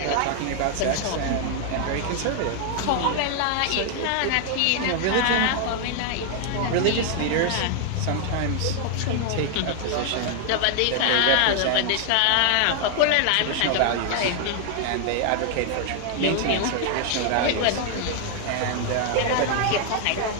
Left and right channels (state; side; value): different; both; correlation 0.00